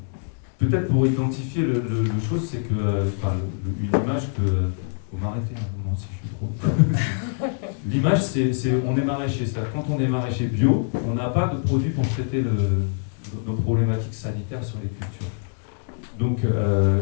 Peut-être pour identifier le chose, c'est que une image que... Vous m'arrêtez un moment si je suis trop... L'image, on est maraîcher. C'est-à-dire quand on est maraîcher bio, on n'a pas de produit pour traiter nos problématiques sanitaires sur les cultures. Donc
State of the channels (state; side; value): silent; right; digital silence